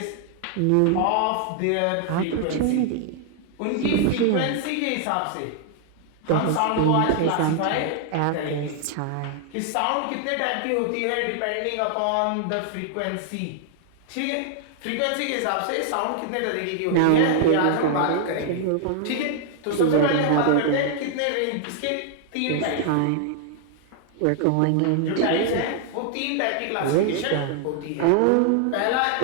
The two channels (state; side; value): different; both; correlation 0.00